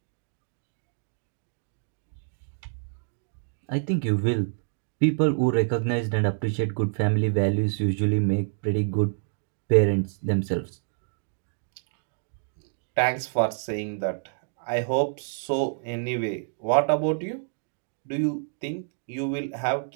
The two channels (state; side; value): silent; left; digital silence